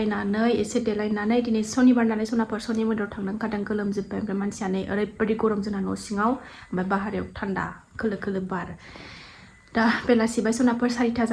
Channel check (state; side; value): identical; both; correlation 1.00